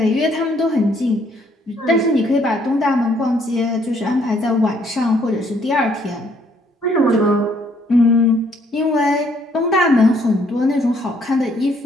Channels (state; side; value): normal; both; correlation 0.66